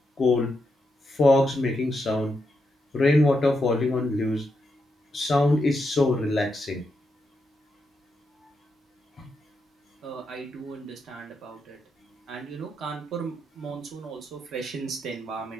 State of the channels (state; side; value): normal; both; correlation 0.83